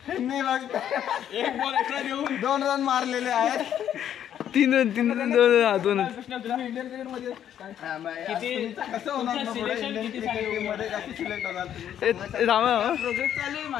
त्यांनी मग 1 बॉल एक्स्ट्रा देऊन 2 रन मारलेले आहेत. 3 रन 2 इंडियन क्रिकेट मध्ये कसं होणार प्रोजेक्ट चालू आहे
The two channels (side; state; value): right; quieter; 10.1 dB